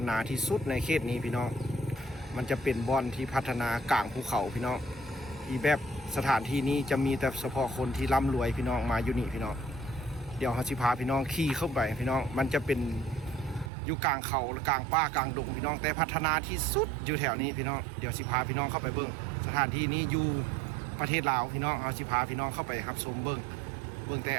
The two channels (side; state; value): left; drops out; at 13.7 s